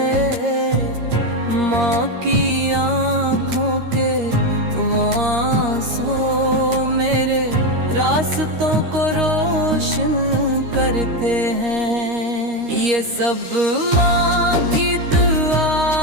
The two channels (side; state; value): left; late; 13 ms